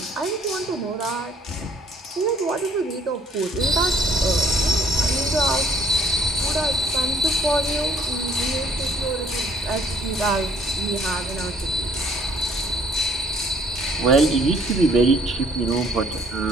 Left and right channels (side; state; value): both; normal; correlation 0.62